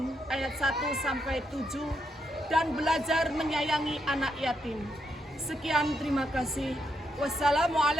ayat 1-7 dan belajar menyayangi anak yatim. Sekian, terima kasih.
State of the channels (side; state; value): both; normal; correlation 0.80